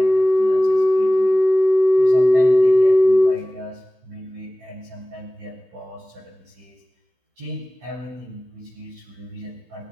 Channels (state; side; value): late; left; 16 ms